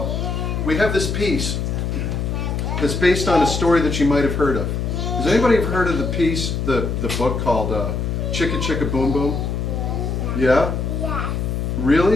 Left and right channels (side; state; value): left; noise; hum, 1 dB below the sound